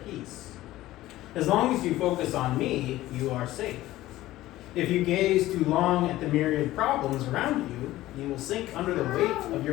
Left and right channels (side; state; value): right; quieter; 16.0 dB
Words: As long as you focus on me, you are safe. If you gaze too long at the myriad problems around you, you will sink under the weight of